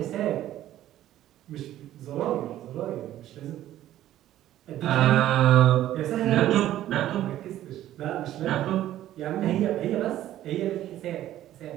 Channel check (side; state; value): left; quieter; 13.1 dB